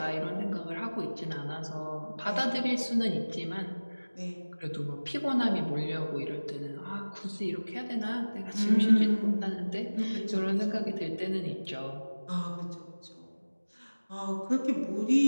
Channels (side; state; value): both; inverted; correlation -1.00